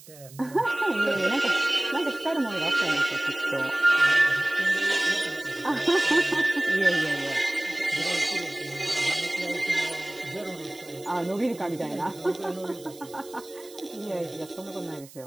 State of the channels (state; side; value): noise; right; hiss, 20 dB below the sound